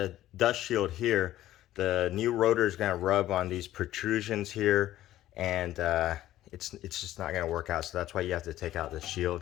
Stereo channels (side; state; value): right; quieter; 14.0 dB